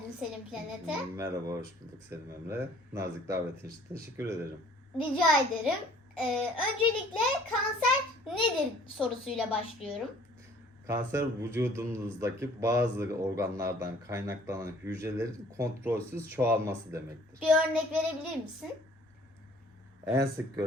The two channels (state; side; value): normal; both; correlation 0.55